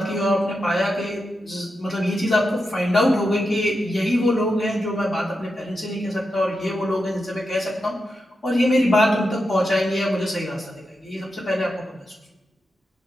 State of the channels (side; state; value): both; normal; correlation 0.88